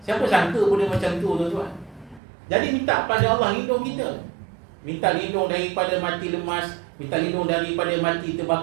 Siapa sangka benda macam tu, tuan-tuan? Jadi minta pada Allah lindung kita. Minta lindung daripada mati lemas, minta lindung daripada mati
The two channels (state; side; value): drops out; left; at 2.2 s